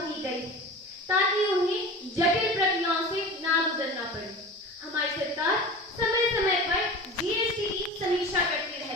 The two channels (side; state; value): both; normal; correlation 0.34